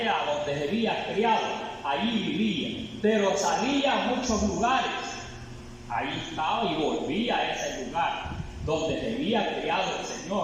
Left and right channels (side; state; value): both; identical; correlation 1.00